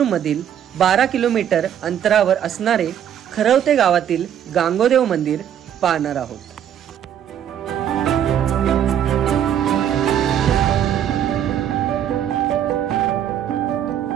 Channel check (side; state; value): left; quieter; 9.7 dB